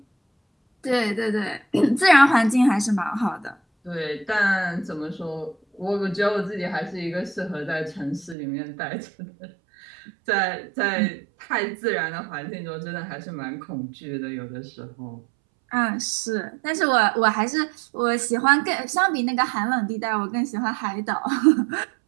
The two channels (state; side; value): drops out; left; at 8.3 s